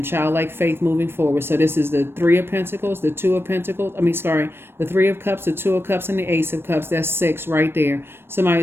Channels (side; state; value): left; late; 0.11 ms